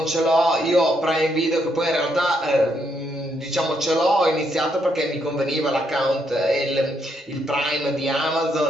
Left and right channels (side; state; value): both; normal; correlation 0.76